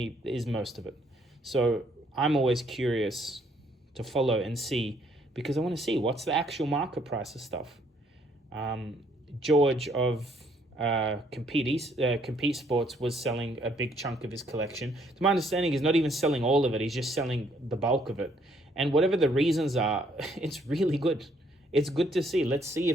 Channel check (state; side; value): normal; both; correlation 0.67